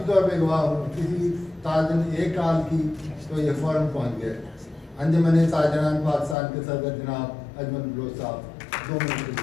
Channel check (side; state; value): right; drops out; at 6.4 s